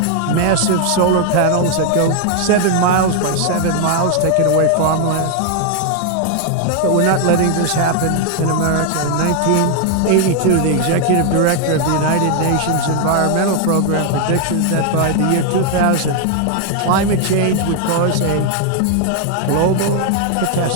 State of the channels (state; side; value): different; both; correlation 0.00